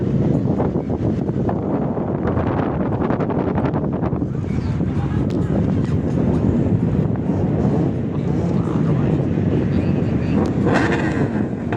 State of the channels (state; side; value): identical; both; correlation 1.00